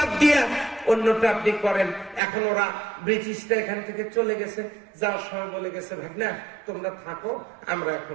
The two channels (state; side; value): drops out; left; at 2.2 s